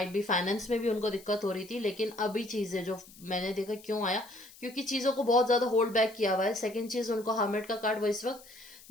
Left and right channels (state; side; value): noise; left; hiss, 21 dB below the sound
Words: भी फाइनेंस में भी उनको दिक्कत हो रही थी, लेकिन अभी चीजें जो मैंने देखा क्यों आया, क्योंकि चीजों को बहुत ज्यादा होल्ड बैक किया हुआ है। सेकंड चीज, उनको हर्मिट का कार्ड, वो इस वक्त